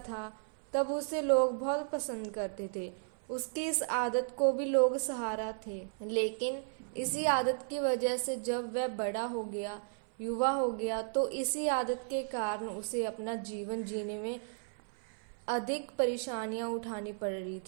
तब उसे लोग बहुत पसंद करते थे। उसकी इस आदत को भी लोग सहारा थे, लेकिन इसी आदत की वजह से जब वह बड़ा हो गया, युवा हो गया, तो इसी आदत के कारण उसे अपना जीवन जीने में अधिक परेशानियां उठानी पड़ रही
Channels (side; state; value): left; silent; 55 dB below the other